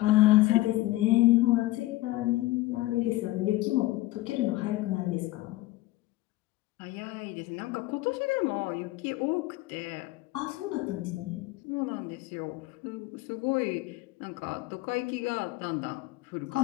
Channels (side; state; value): right; quieter; 17.9 dB